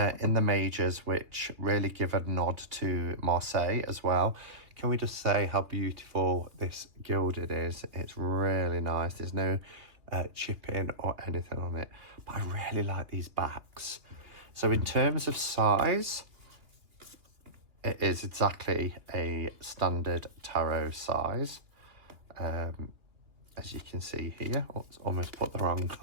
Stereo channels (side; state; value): left; late; 2.8 ms